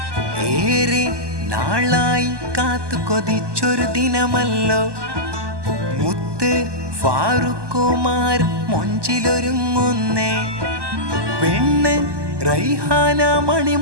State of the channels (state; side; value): late; left; 1.2 ms